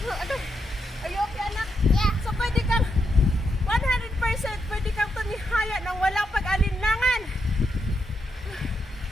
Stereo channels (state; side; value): normal; both; correlation 0.82